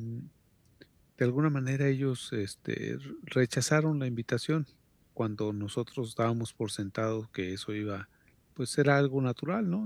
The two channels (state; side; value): identical; both; correlation 1.00